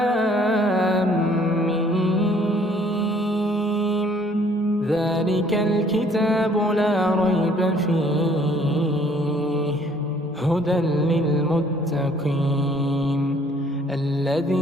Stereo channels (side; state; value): both; normal; correlation 0.60